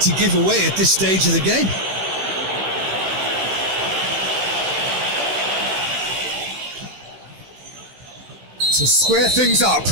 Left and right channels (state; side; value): late; left; 16 ms